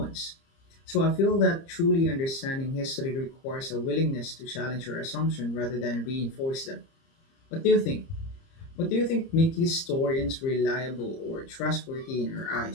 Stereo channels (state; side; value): late; right; 30 ms